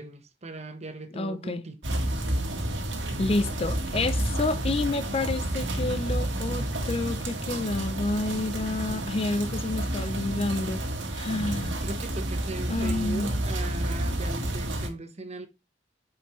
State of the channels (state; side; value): normal; both; correlation 0.69